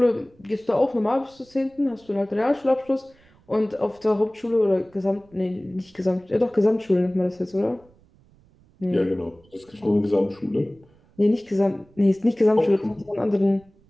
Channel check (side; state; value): right; noise; rumble, 30 dB below the sound